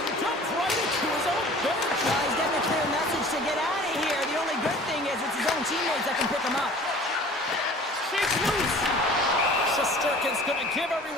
dumped right into his own bench. He's getting a clear message to get out of here. The only good thing is it's his own teammates that can pick him up. Shakes loose. Shesterkin's going to give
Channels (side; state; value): both; normal; correlation 0.46